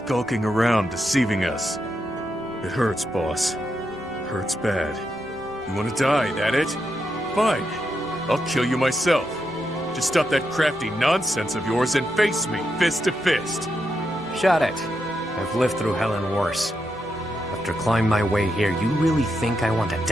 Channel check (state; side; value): normal; both; correlation 0.84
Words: around, deceiving us. It hurts, boss. Hurts bad. You want to die, that it? Fine. I'll kill you myself. Just stop that crafty nonsense of yours and face me, fist to fist. Shut it. I've lived through hell and worse. After climbing my way here, you really think I want to